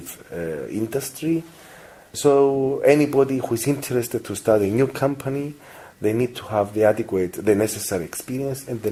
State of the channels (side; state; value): both; identical; correlation 1.00